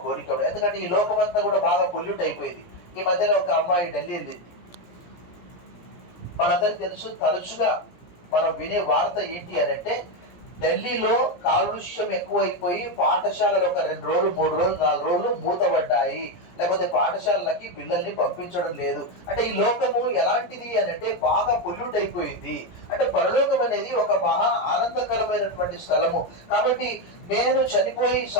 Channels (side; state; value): right; late; 17 ms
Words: కోరిక. ఎందుకంటే ఈ లోకం అంతా కూడా బాగా పొల్యూట్ అయిపోయింది. ఈ మధ్యలో ఒక అమ్మాయి ఢిల్లీ వెళ్ళింది. మనందరికి తెలుసు, తరచుగా మనం వినే వార్త ఏంటి అని అంటే ఢిల్లీలో కాలుష్యం ఎక్కువైపోయి పాఠశాలలు ఒక 2 రోజులు 3 రోజులు 4 రోజులు మూతబడ్డాయి, లేకపోతే పాఠశాలలకి పిల్లల్ని పంపించడం లేదు. అంటే ఈ లోకము ఎలాంటిది అని అంటే బాగా పొల్యూట్ అయిపోయింది. అంటే పరలోకం అనేది ఒక మహా ఆనందకరమైనటువంటి స్థలము. కాబట్టి నేను చనిపోయి